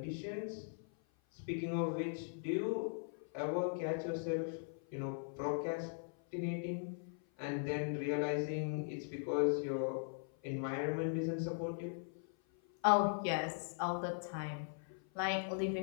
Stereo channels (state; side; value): silent; right; 51 dB below the other